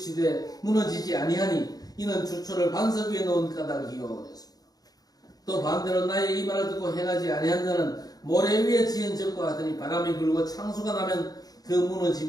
무너지지 아니하니 이는 주초를 반석 위에 놓은 까닭이요. 그랬습니다. 또 반대로 나의 이 말을 듣고 행하지 아니한 자는 모래 위에 지은 집과 같으니 바람이 불고 창수가 나면 그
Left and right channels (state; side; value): late; right; 0.18 ms